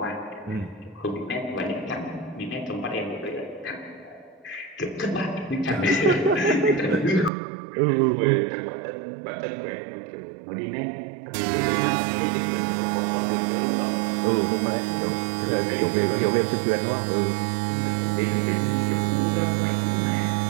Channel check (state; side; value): drops out; left; at 7.3 s